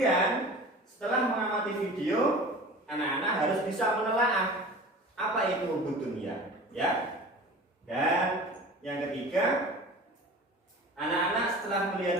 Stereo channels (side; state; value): both; normal; correlation 0.39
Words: setelah mengamati video, anak-anak harus bisa menelaah apa itu hubud dunia, Dan yang ketiga, anak-anak setelah melihat